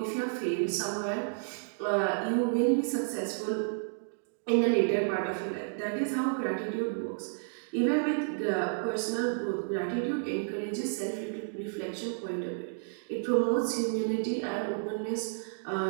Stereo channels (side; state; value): left; silent; digital silence